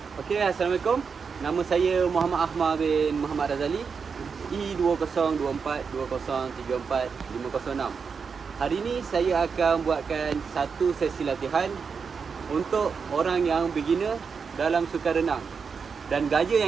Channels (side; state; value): left; quieter; 5.7 dB